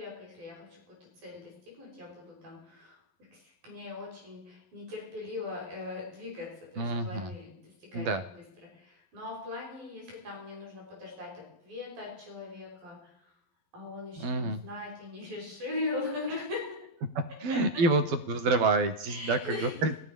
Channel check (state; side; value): late; left; 11 ms